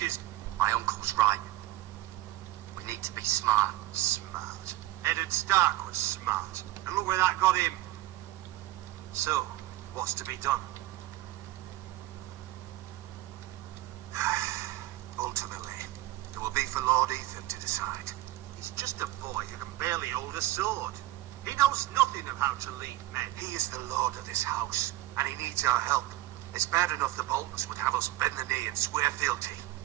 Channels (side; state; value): left; quieter; 16.6 dB